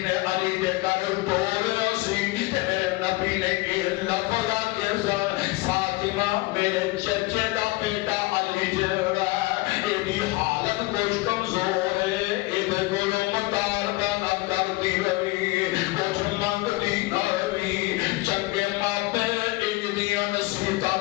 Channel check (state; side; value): quieter; right; 21.3 dB